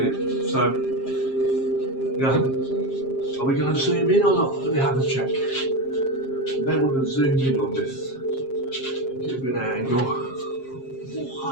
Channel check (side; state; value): right; late; 7.5 ms